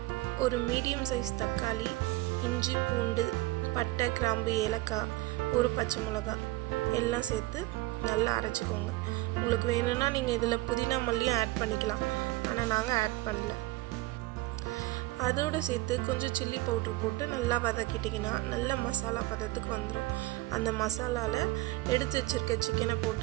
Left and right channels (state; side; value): quieter; left; 20.0 dB